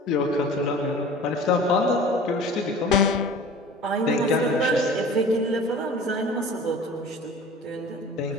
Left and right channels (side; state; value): both; normal; correlation 0.42